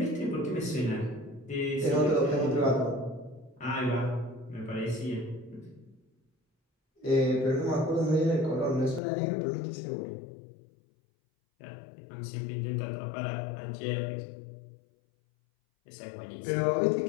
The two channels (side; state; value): right; drops out; at 9.0 s